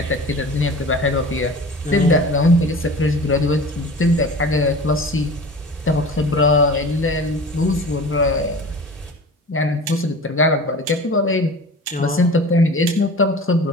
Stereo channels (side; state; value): both; normal; correlation 0.38